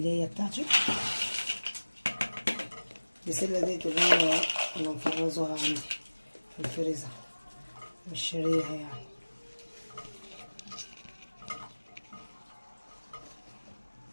بتاعتي. البسلة ديت اللي انا مفرزوها عندي في الفريزر، مش شاريها يعني.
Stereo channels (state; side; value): inverted; both; correlation -1.00